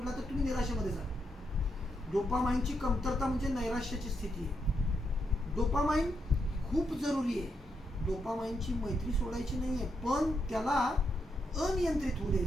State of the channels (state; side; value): normal; both; correlation 0.81